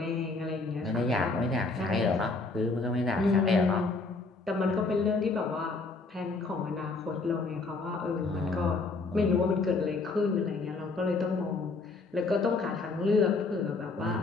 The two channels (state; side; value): quieter; right; 3.7 dB